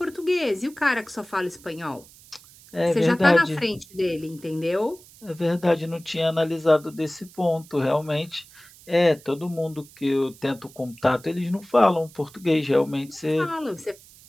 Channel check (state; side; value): noise; right; hiss, 23 dB below the sound